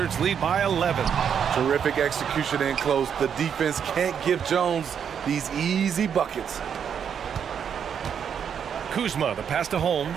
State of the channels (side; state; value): left; quieter; 7.8 dB